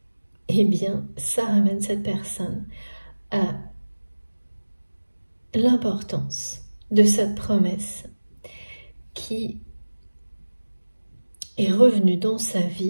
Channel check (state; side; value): inverted; both; correlation -1.00